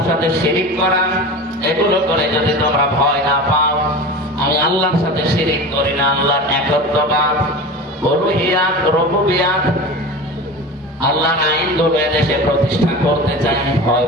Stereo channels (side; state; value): both; normal; correlation 0.31